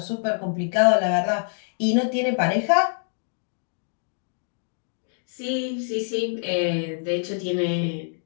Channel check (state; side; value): silent; right; digital silence